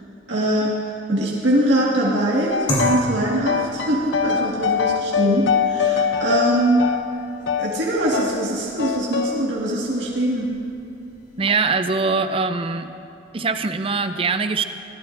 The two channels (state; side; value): normal; both; correlation 0.21